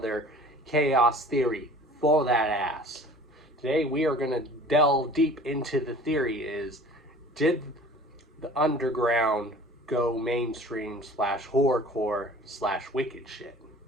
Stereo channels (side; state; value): both; normal; correlation 0.46